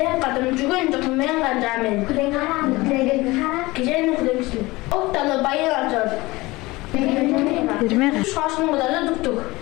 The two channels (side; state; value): right; quieter; 21.2 dB